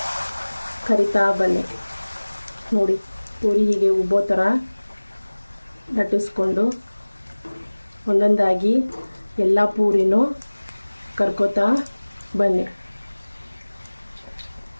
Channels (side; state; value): both; inverted; correlation -1.00